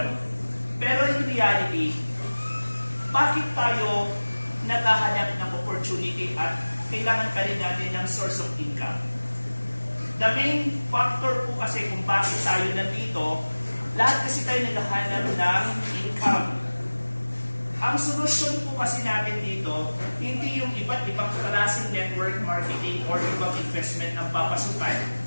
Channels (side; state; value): both; inverted; correlation -1.00